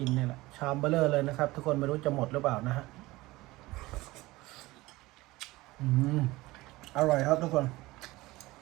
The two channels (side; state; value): left; quieter; 19.8 dB